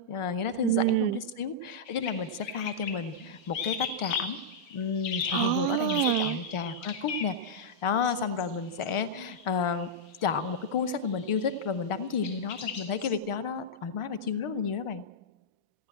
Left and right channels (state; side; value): late; right; 1.4 ms